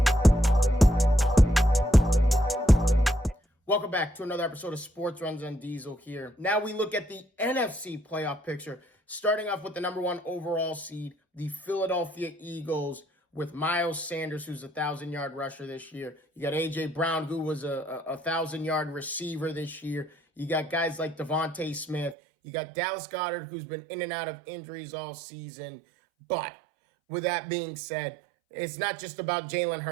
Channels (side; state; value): left; drops out; at 22.2 s